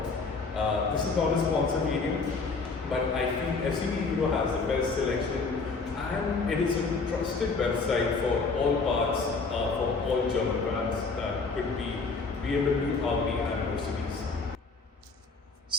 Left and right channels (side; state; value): right; quieter; 4.3 dB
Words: This is not a sponsored video, but I feel FCP Euro has the best selection, and it is a trusted website for all parts for all German brands that could be BMW, Audi, and Mercedes.